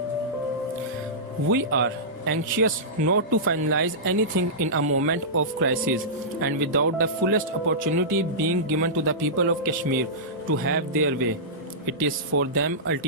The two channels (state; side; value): normal; both; correlation -0.17